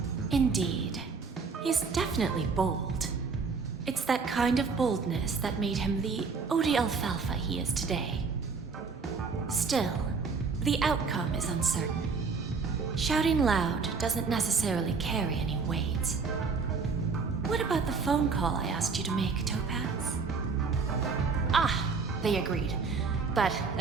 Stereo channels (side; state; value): left; quieter; 4.9 dB